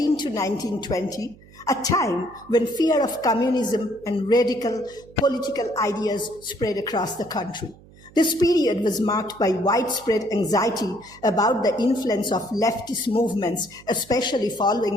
to 1920, a time when fear of communism and radical political ideas spread across the country. This period was marked by widespread anxiety about the influence of leftist movements, especially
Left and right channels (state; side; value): noise; right; hum, 24 dB below the sound